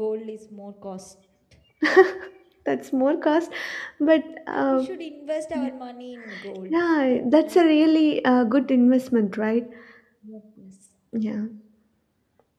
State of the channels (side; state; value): both; identical; correlation 1.00